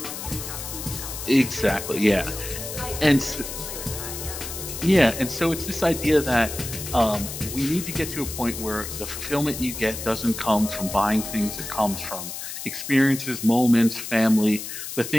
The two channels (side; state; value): left; noise; hiss, 8 dB below the sound